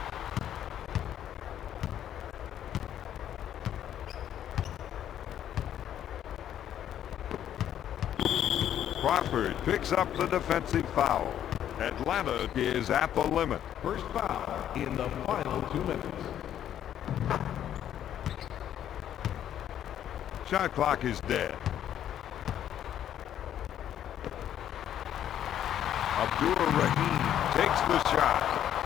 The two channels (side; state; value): right; quieter; 10.6 dB